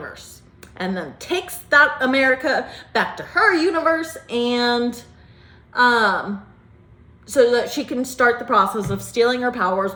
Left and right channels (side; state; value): both; identical; correlation 1.00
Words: and then takes that America back to her universe, and so that she can start the process of stealing her powers